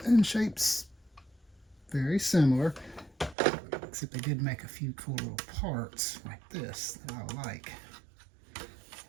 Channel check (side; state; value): left; drops out; at 3.4 s